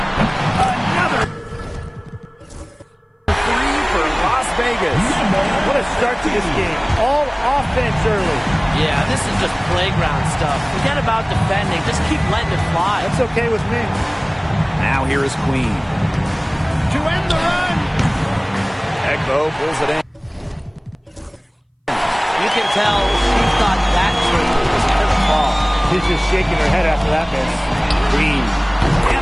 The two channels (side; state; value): both; identical; correlation 1.00